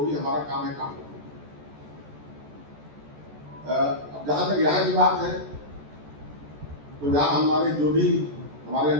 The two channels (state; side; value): late; left; 14 ms